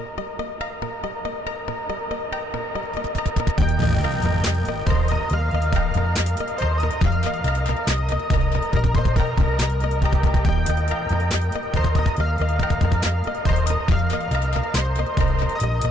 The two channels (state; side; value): normal; both; correlation 0.76